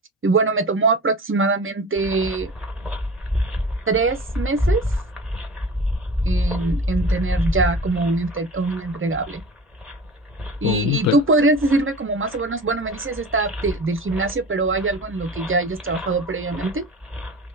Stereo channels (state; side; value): normal; both; correlation 0.36